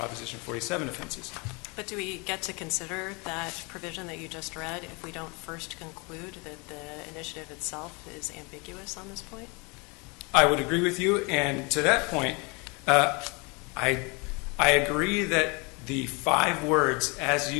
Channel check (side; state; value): right; quieter; 29.5 dB